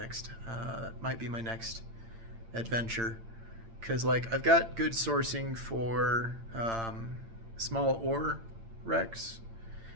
That might be my next adventure, because like I've got good sourcing for small ore wrecks,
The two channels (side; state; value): left; late; 8.8 ms